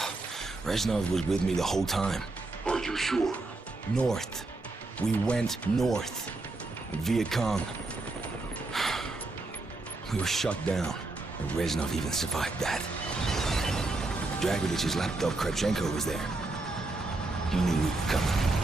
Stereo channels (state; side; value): quieter; left; 3.1 dB